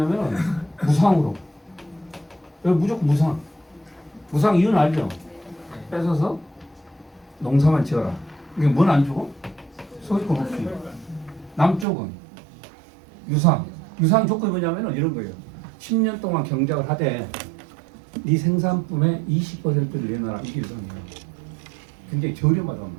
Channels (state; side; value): drops out; left; at 11.9 s